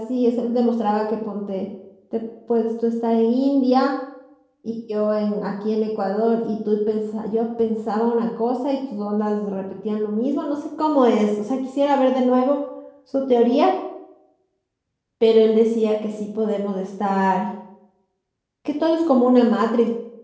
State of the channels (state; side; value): identical; both; correlation 1.00